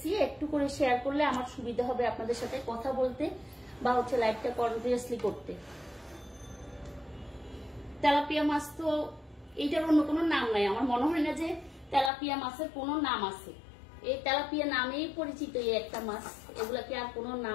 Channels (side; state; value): right; drops out; at 12.1 s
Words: একটু করে শেয়ার করলে আমার সুবিধা হবে আপনাদের সাথে কথা বলতে বা হচ্ছে লাইভটা কন্টিনিউয়াসলি করতে। তেলাপিয়া মাছ তো এইটার অন্য কোনো নাম নাই, আমার মনে হয় না যে তেলাপিয়া মাছের কোনো নাম আছে। এই তেলাপিয়া নামেই পরিচিত এই একটা মাছ, এগুলাকে আর কোনো